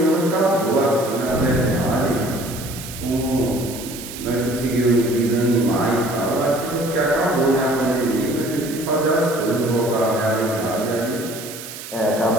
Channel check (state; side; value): noise; right; hiss, 12 dB below the sound